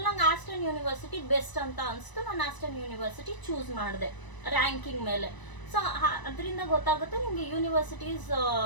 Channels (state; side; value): late; right; 1.0 ms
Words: ನಂಗೆ ಆಸ್ಟನ್ ಯೂನಿವರ್ಸಿಟಿ ಬೆಸ್ಟ್ ಅಂತ ಅನಿಸ್ತು. ನಾನು ಆಸ್ಟನ್ ಯೂನಿವರ್ಸಿಟಿ ಚೂಸ್ ಮಾಡಿದೆ ರ್ಯಾಂಕಿಂಗ್ ಮೇಲೆ. ಸೊ ಅದರಿಂದ ಗೊತ್ತಾಗುತ್ತೆ ನಿಮಗೆ ಯೂನಿವರ್ಸಿಟೀಸ್